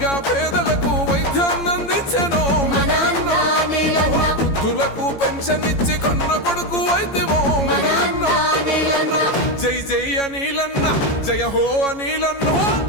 పేదలకు వైద్యాన్ని అందించెను వృద్ధులకు పెన్షన్ ఇచ్చి కన్న కొడుకు అయితేవో జై జై అనిలన్న జయ హో అనిలన్నో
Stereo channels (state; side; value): late; right; 14 ms